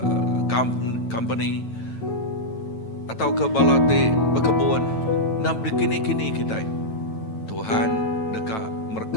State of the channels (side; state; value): right; late; 9.1 ms